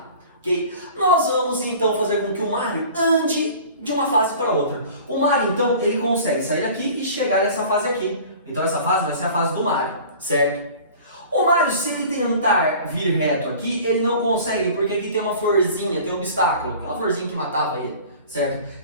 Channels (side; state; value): both; inverted; correlation -0.43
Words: ok? Nós vamos então fazer com que o Mario ande de uma fase para outra. O Mario então ele consegue sair daqui e chegar nessa fase aqui. Então essa fase vai ser a fase do Mario, certo? O Mario, se ele tentar vir reto aqui, ele não consegue porque aqui tem uma florzinha, tem um obstáculo, aquela florzinha que matava ele, certo?